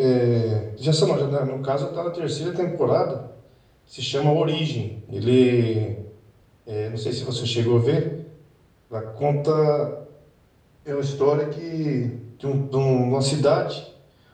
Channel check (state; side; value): identical; both; correlation 1.00